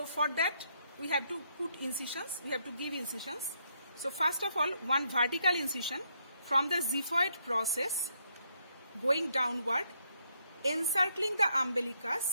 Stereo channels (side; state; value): both; inverted; correlation -0.75